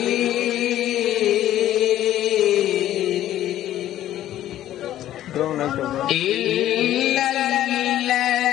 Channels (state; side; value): quieter; right; 12.8 dB